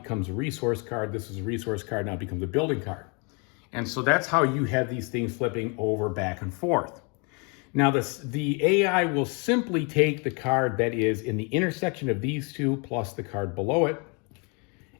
a resource card. This is a resource card. Now it becomes a building card. And so that's how you have these things flipping over back and forth. Now the AI will simply take the card that is in the intersection of these two plus the card below it,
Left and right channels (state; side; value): quieter; right; 33.4 dB